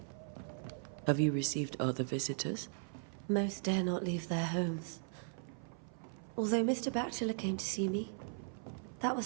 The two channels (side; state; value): left; silent; 52 dB below the other